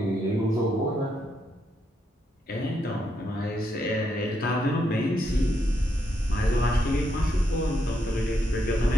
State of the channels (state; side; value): normal; both; correlation 0.79